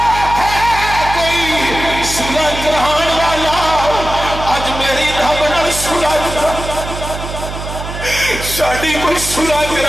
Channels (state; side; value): noise; right; hum, 8 dB below the sound